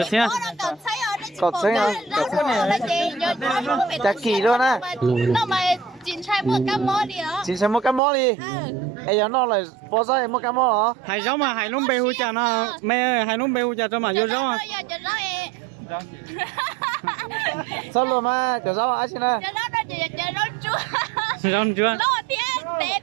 xe. Cọt xanh à? Chả kỳ luôn á. chín chai một cam mò đi đó. Chín xem một cái món đi. Ê giờ nó lại po ra một cái món hả? Hải rau mà hải lông bê hu chả nó mẹ ơi hải lông bê hu chả cho mà vô rau à. Sao luôn mà chờ rau ai xin à? Rau chưa?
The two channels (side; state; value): left; drops out; at 8.0 s